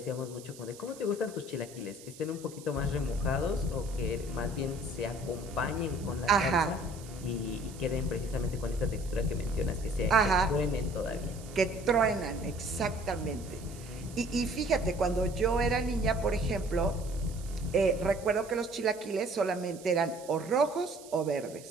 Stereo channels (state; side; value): noise; right; hiss, 19 dB below the sound